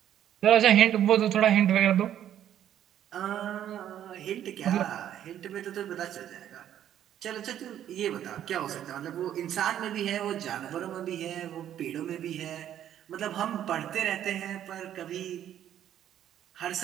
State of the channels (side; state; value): left; quieter; 10.8 dB